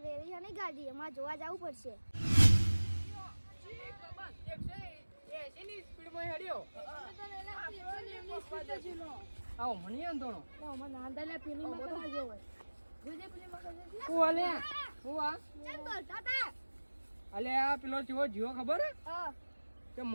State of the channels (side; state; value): both; inverted; correlation -1.00